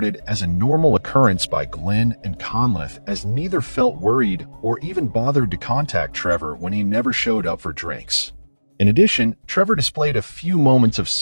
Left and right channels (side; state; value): both; inverted; correlation -1.00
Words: as a normal occurrence by Glenn and Conliffe, as neither felt worried or even bothered to contact Trevor when he never showed up for drinks. In addition, Trevor displayed a few moments of